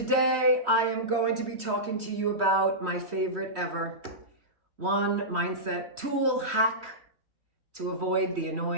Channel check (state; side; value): late; left; 3.1 ms